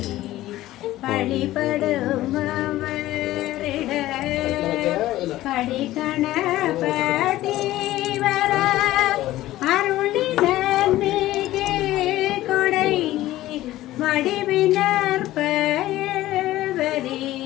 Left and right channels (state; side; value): quieter; right; 15.6 dB